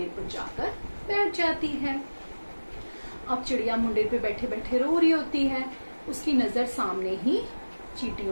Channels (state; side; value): inverted; both; correlation -1.00